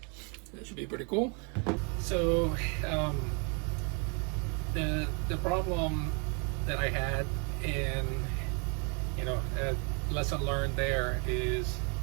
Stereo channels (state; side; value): quieter; left; 35.5 dB